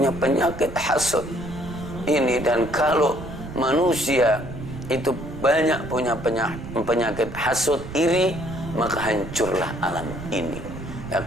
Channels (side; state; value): right; noise; rumble, 12 dB below the sound